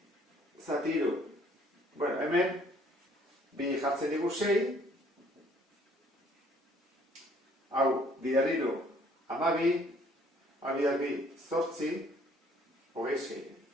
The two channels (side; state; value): both; normal; correlation 0.60